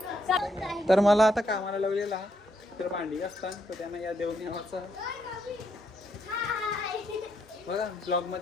तर मला आता कामाला लावलेला तर भांडी असतात तर त्यांना या देऊन यावाचा बघा ब्लॉग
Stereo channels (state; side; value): normal; both; correlation 0.76